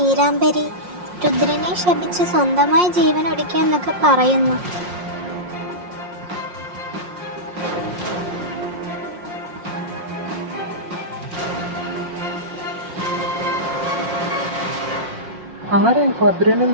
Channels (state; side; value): late; left; 5.6 ms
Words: രുദ്രനെ ശപിച്ച് സ്വന്തമായി ജീവൻ ഒടുക്കിയെന്നൊക്കെ പറയുന്നു. ആരായി ഭദ്രനും